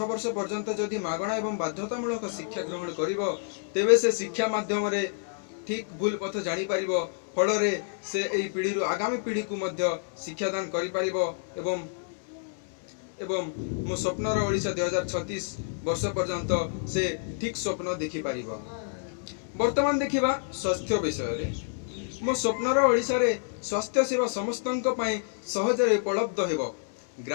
वर्ष पर्यंत जदि मागणा एवं बाध्यतामूलक शिक्षा ग्रहण करिवो तेबे से शिक्षा माध्यम रे ठीक भूल पथ जानी पारिबो फल रे से एई पीढ़ी रु आगामी पीढ़ी को मध्य शिक्षादान करि पारिबो एवं मो स्वप्नर ओडिशा 2036 वर्ष पर्यंत से ठीक स्वप्न देखि पारिबो। वर्तमान देखिबा स्वास्थ्य विषय रे मो स्वप्नर ओडिशा रे स्वास्थ्य सेवा समस्तंक पई सहज रे उपलब्ध हेबो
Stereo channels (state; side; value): silent; right; 59 dB below the other